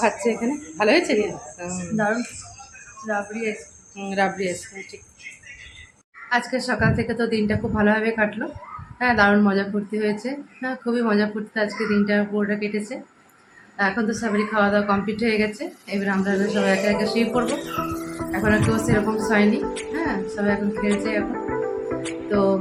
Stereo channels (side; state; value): both; identical; correlation 1.00